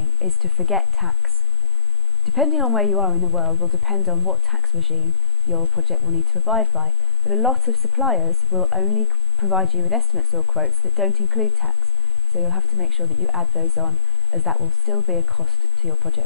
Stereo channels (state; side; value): normal; both; correlation 0.96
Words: is to forget tax. Depending on where you are in the world will depend on what tax regime your project will need to abide by, but a lot of suppliers will only provide you with estimates or quotes that don't include tax, so you'll have to make sure that you add those on, as that will still be a cost to your